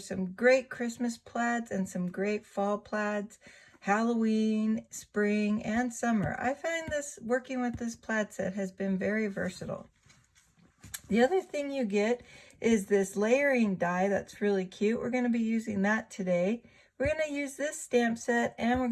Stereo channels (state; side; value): identical; both; correlation 1.00